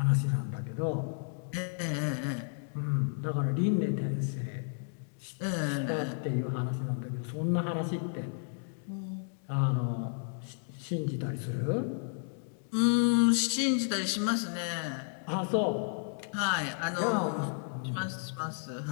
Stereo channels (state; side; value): silent; right; digital silence